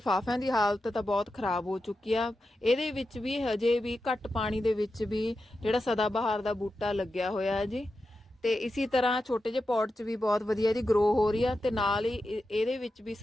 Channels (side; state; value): both; normal; correlation 0.90